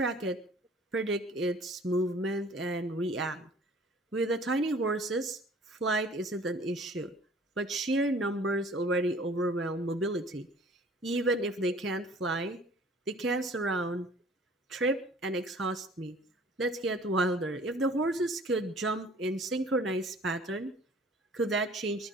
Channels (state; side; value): normal; both; correlation 0.51